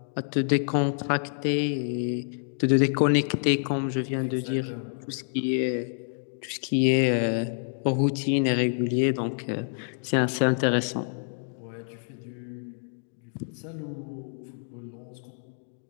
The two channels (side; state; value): right; silent; digital silence